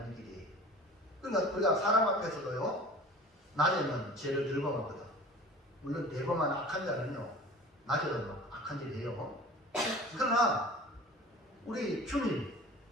길이에요. 그러니까 우리가 사람 앞에서도요 낮에는 죄를 늘 범하거든. 물론 대범한 악한 자는요 낮에도 막 악한 일을 해요. 그러나 우리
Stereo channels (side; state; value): both; normal; correlation 0.42